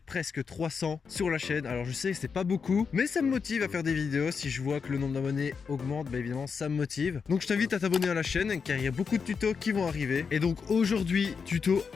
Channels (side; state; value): right; quieter; 5.7 dB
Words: presque 300 sur la chaîne. Alors je sais que c'est pas beaucoup, mais ça me motive à faire des vidéos. Si je vois que le nombre d'abonnés augmente, bah évidemment ça me motive. Donc je t'invite à t'abonner à la chaîne car il y a beaucoup de tutos qui vont arriver. Et donc aujourd'hui, tuto